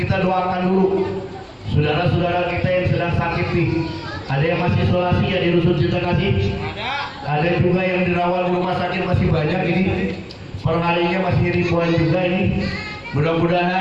doakan dulu saudara-saudara kita yang sedang sakit nih. Ada yang masih isolasi ya di Rusun Cinta Kasih. Ada juga yang dirawat di rumah sakit, masih banyak ini. Perharinya masih ribuan juga ini.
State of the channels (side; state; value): both; identical; correlation 1.00